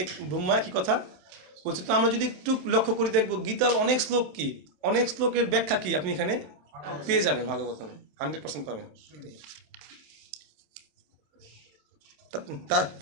ব্রহ্মা একই কথা বলছে। তো আমরা যদি একটু লক্ষ্য করি দেখবো গীতার অনেক শ্লোক কি, অনেক শ্লোকের ব্যাখ্যা কি আপনি এখানে পেয়ে যাবেন, ভাগবতমে 100% পাবেন।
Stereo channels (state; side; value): late; left; 27 ms